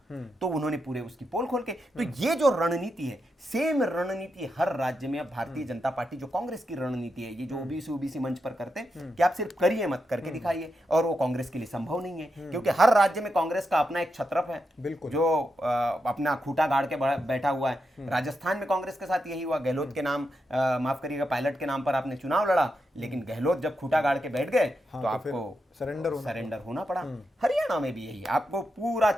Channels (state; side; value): normal; both; correlation 0.85